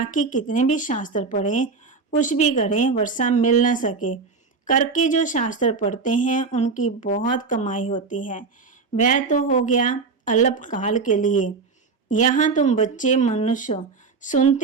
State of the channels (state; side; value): quieter; left; 4.7 dB